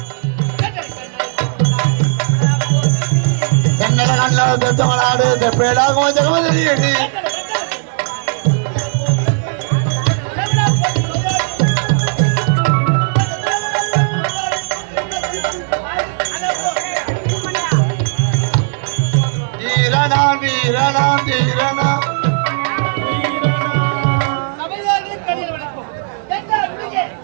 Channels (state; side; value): silent; left; digital silence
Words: தென்னல கண்ண தெத்தமலாடு தெப்பேடாகும் ஜெகமதரியடி வீரனான் வீரனான் வீரனான்